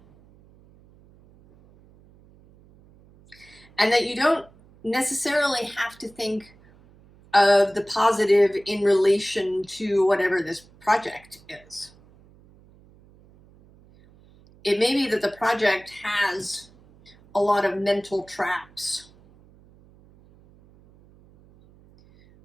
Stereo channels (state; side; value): noise; right; hum, 27 dB below the sound